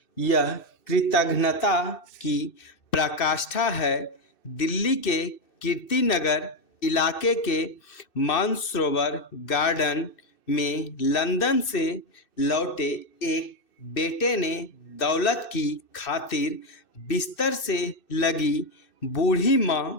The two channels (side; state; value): right; late; 2.6 ms